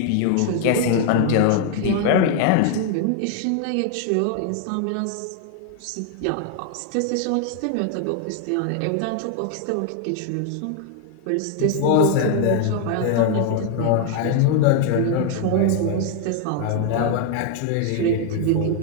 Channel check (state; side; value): different; both; correlation 0.00